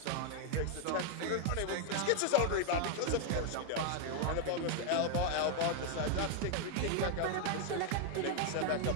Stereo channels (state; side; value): different; both; correlation 0.00